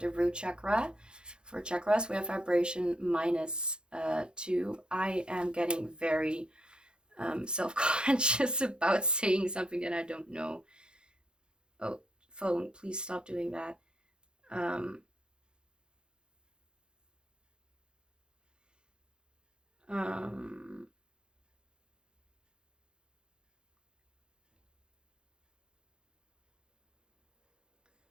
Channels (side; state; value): left; late; 0.049 ms